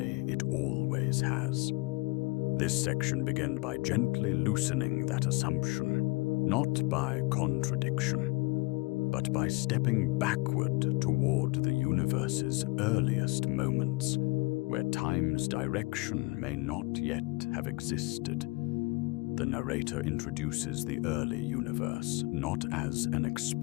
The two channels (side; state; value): right; quieter; 24.3 dB